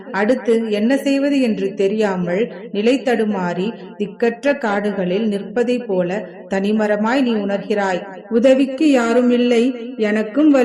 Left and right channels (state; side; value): identical; both; correlation 1.00